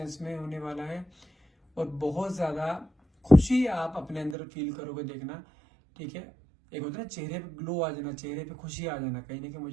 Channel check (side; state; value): left; drops out; at 4.4 s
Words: में होने वाला है। और बहुत ज्यादा खुशी आप अपने अंदर फील करोगे, देखना। ठीक है, एक होता है ना चेहरे पे ग्लो आ जाना, चेहरे पे खुशी आ जाना, कहीं ना कहीं